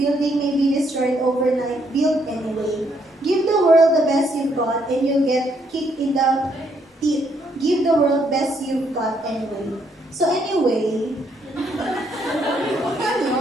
may be destroyed overnight. Build anyway. Give the world the best you've got and you'll get kicked in the teeth. Give the world best you've got anyway. So anyway,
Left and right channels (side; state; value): both; normal; correlation 0.72